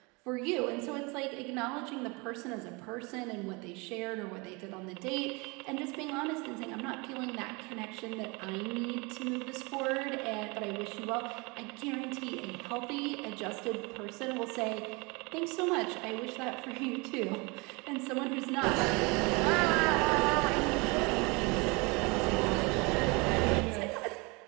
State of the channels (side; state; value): left; quieter; 27.7 dB